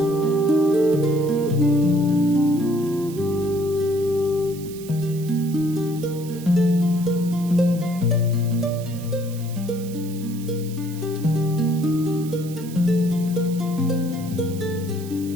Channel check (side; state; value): right; noise; hiss, 17 dB below the sound